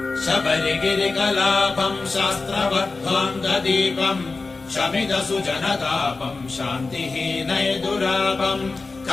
शबरिगिरिकलापं शास्त्रवद्ध्वान्तदीपं शमिदसुजनतापं शान्तिहीनैदुरापं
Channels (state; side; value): quieter; right; 3.9 dB